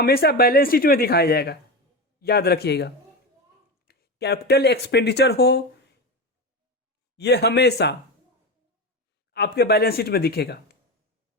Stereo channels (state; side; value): normal; both; correlation 0.20